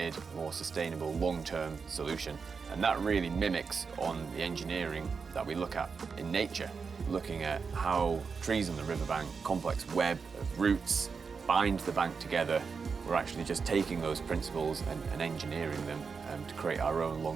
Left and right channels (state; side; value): quieter; left; 5.3 dB